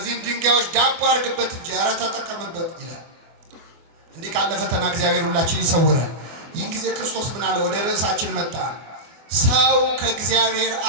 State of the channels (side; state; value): left; late; 24 ms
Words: ድንጋዮች ዳቦ አድርግበት እንጂ ኧረ ተጠቀምበት ይላል። እንዲህ ካለ ፈተና እግዚአብሔር ሁላችን ይሰውራል። ይህን ጊዜ ክርስቶስ ምን አለ? ወደ ርዕሳችን መጣ። ሰው ከእግዚአብሔር